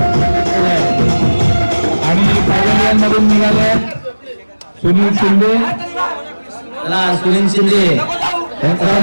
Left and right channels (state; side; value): inverted; both; correlation -1.00